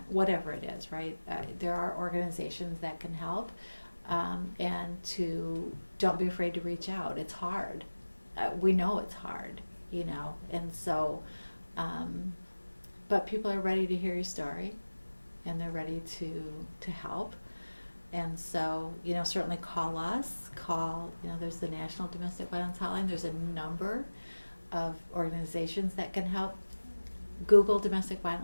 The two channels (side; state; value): both; inverted; correlation -1.00